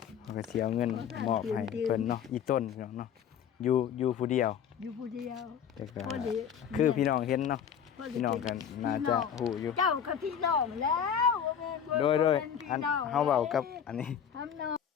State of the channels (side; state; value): right; quieter; 8.3 dB